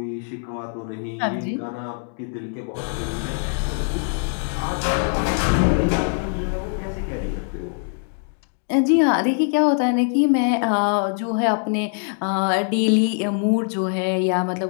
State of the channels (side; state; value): right; silent; 63 dB below the other